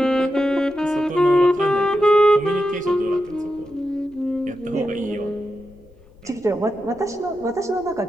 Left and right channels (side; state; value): left; noise; rumble, 26 dB below the sound